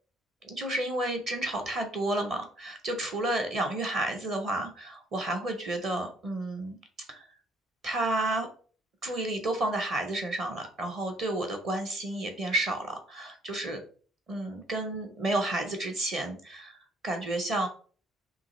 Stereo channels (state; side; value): normal; both; correlation 0.64